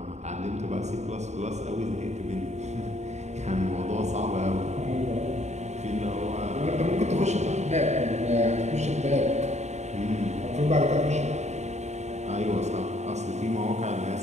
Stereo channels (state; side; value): late; left; 0.33 ms